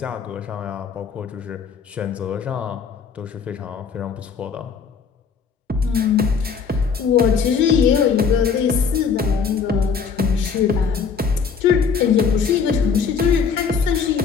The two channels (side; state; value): right; quieter; 6.0 dB